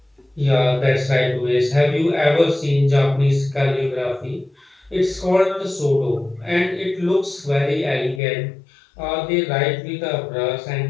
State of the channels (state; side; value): drops out; right; at 8.2 s